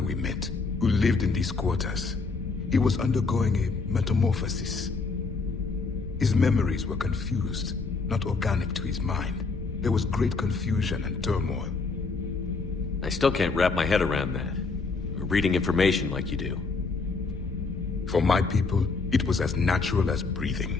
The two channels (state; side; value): quieter; right; 4.2 dB